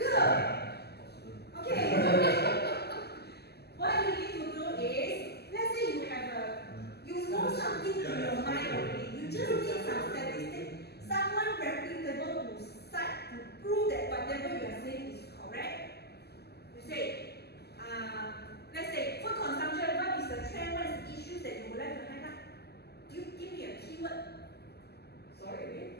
Okay. What you need to do is, let's say you know something in your mind already. You just need some statistics, someone reputable to cite to prove that whatever you are saying is correct. You say, let's say food consumption. What is the trend? What is the issues that you would like to highlight? You give me a keyword. Sorry again?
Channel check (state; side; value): late; right; 0.47 ms